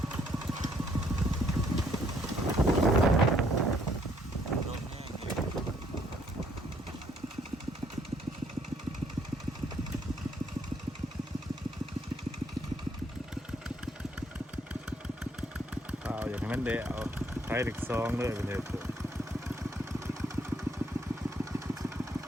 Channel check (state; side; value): normal; both; correlation 0.67